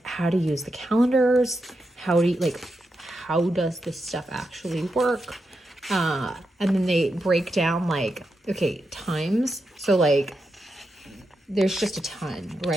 how to use the calendars. How does this stuff actually work? And then they break down like, okay, times. So like, there's just a ton,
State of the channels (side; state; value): both; normal; correlation 0.86